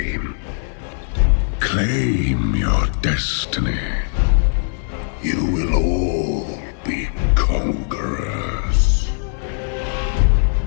Claim your destiny. You will all be conquerors.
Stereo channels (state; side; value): silent; right; digital silence